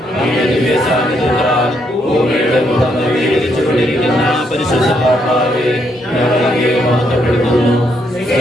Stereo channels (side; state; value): both; normal; correlation 0.75